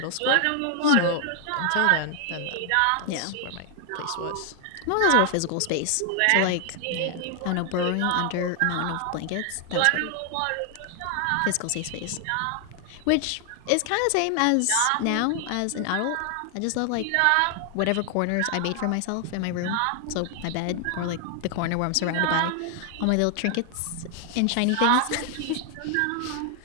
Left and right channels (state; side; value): different; both; correlation 0.00